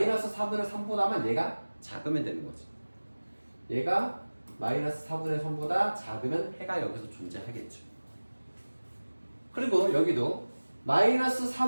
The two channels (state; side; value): inverted; both; correlation -1.00